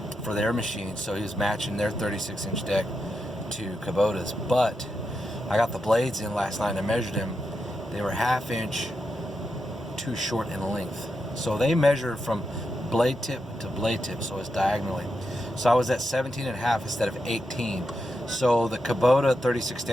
for their machines, so he was matching their 36-inch deck to Kubota's. But I got the blades in last night and I measured them. They were ½ inch too short in length. So they measure from blade tip to blade tip, so it's diagonally. So I was at 17.5 instead of 18. So the Kubota 36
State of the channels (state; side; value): normal; both; correlation 0.86